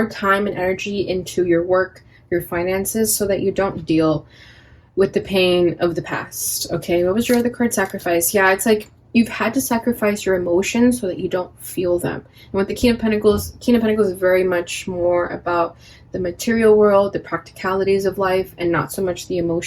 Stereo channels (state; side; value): identical; both; correlation 1.00